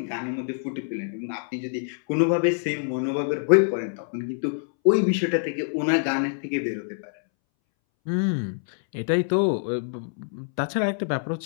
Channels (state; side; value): silent; right; 61 dB below the other